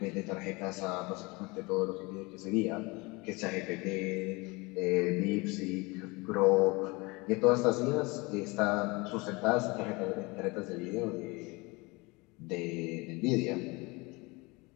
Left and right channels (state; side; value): quieter; right; 25.5 dB